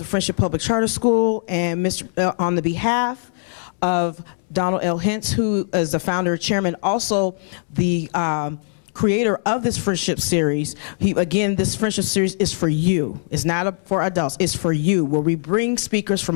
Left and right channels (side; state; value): right; silent; 65 dB below the other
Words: Friendship Public Charter School, and on the behalf of Donald L. Hintz, who is the founder and chairman, also the creator of this friendship series. Again, this friendship series is for you. It's not for adults, it's for you, where we bring speakers